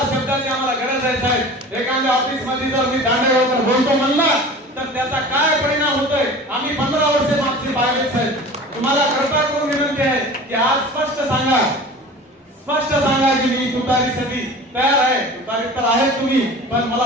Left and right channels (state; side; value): normal; both; correlation 0.39